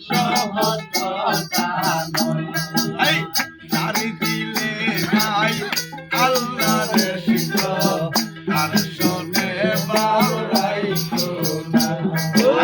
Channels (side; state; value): both; identical; correlation 1.00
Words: সহজ কথা নয় তারি দিলে নাই আল্লাহর শিকর তার শোনে বাউলাই কোনা